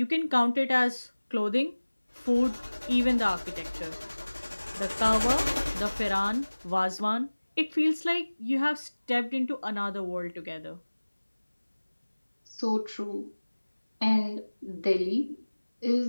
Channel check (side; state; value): both; inverted; correlation -1.00